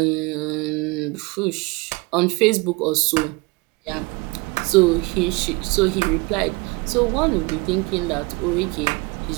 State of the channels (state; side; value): quieter; left; 26.0 dB